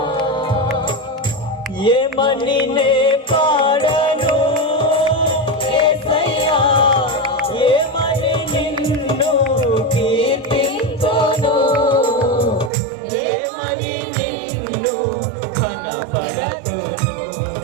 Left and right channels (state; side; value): drops out; left; at 12.7 s